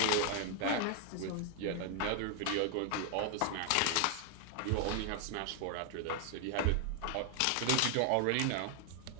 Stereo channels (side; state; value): both; different; correlation 0.00